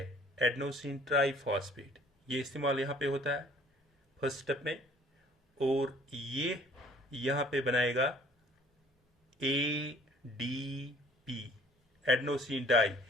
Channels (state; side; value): normal; both; correlation 0.55